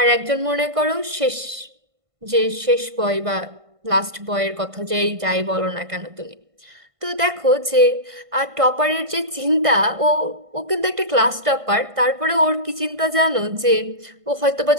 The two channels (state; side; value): late; left; 1.5 ms